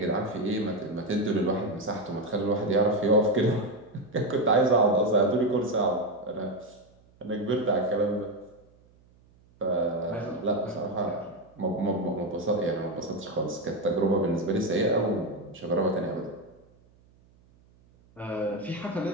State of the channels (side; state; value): right; noise; hum, 30 dB below the sound